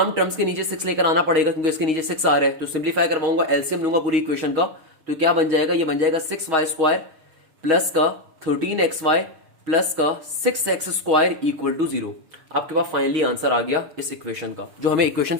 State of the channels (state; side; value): late; left; 6.3 ms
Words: टर्म्स के नीचे 6 लेकर आना पड़ेगा क्योंकि इसके नीचे 6 आ रहा है, तो सिंप्लीफाई करवाऊंगा, एलसीएम लूंगा पूरी इक्वेशन का, तो क्या बन जाएगा, ये बन जाएगा 6 वाई स्क्वायर प्लस का 13 एक्स वाई प्लस का 6 एक्स स्क्वायर इक्वल टू 0। आपके पास फाइनली आंसर आ गया इस इक्वेशन का, जो हमें इक्वेशन